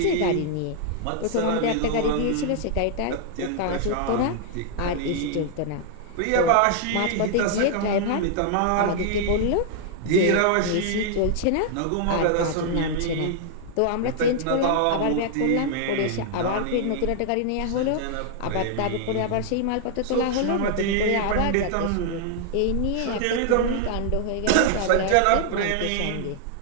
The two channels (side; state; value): both; different; correlation 0.00